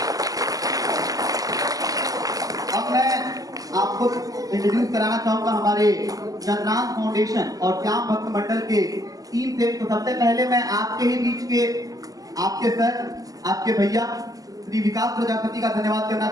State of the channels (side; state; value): left; late; 0.17 ms